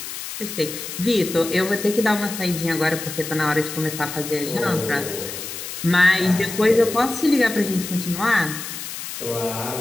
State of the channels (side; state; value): left; noise; hiss, 8 dB below the sound